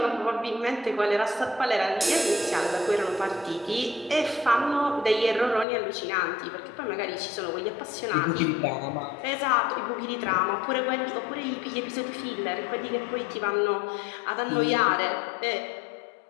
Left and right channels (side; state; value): right; drops out; at 5.7 s